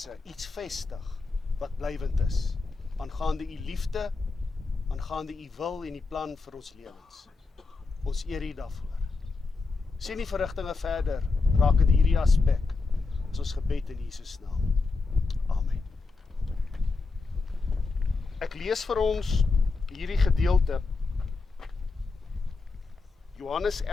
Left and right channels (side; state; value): right; quieter; 4.0 dB